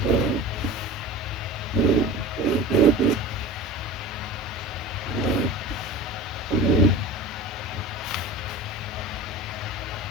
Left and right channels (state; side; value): normal; both; correlation 0.34